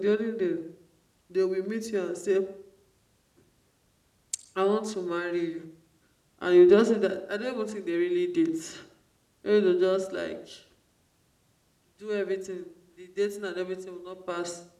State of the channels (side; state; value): both; identical; correlation 1.00